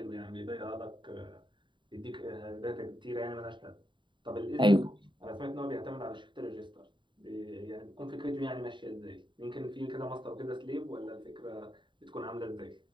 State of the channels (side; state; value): left; late; 0.23 ms